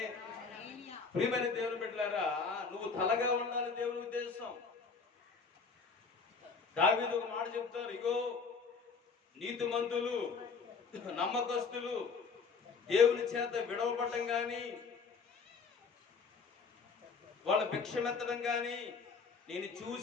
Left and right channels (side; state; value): right; quieter; 5.0 dB